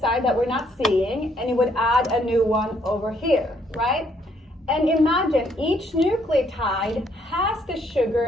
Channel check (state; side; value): normal; both; correlation 0.68